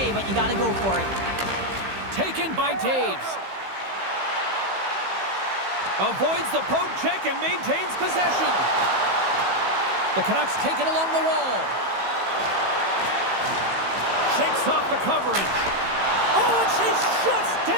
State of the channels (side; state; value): left; late; 15 ms